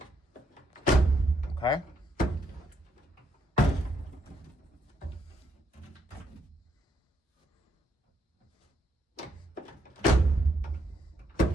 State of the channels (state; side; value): normal; both; correlation 0.75